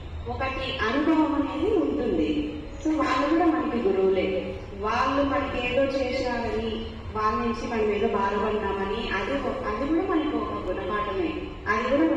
ఒకటి అనుభవం అనేది ఉంటుంది. సో వాళ్ళు కూడా మనకి గురువులే. వాళ్ళు మనకి ఏదో చేసినారని, వాళ్ళ నుంచి మనం ఏదో బాధపడ్డామని అది కూడా మనకి ఒక గుణపాఠమే, అది కూడా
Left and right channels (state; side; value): identical; both; correlation 1.00